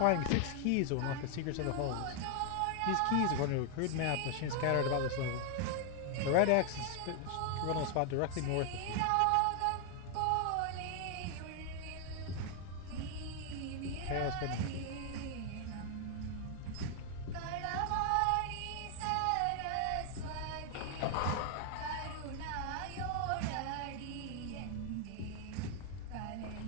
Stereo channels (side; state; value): both; different; correlation 0.00